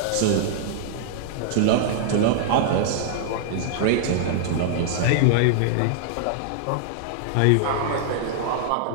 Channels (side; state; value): both; different; correlation -0.01